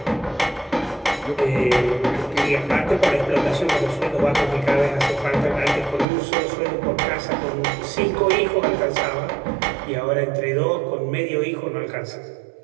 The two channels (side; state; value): left; drops out; at 6.1 s